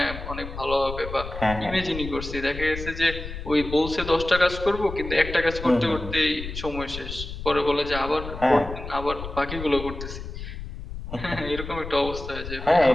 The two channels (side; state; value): left; noise; rumble, 9 dB below the sound